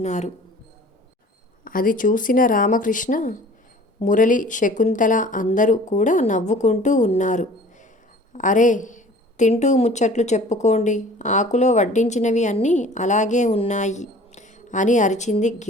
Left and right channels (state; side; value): normal; both; correlation 0.47